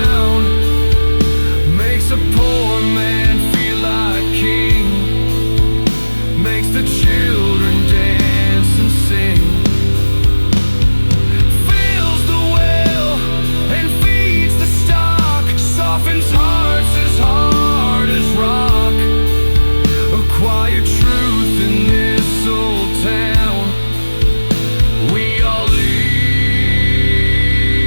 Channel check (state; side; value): inverted; both; correlation -1.00